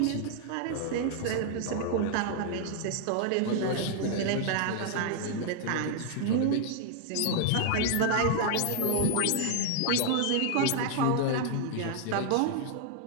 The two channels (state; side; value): different; both; correlation 0.00